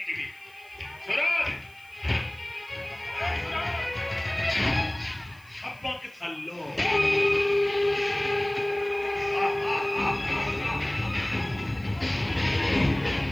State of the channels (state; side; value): noise; right; hiss, 28 dB below the sound